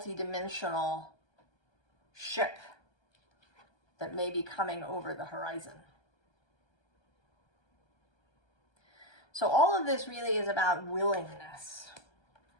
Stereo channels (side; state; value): right; late; 1.3 ms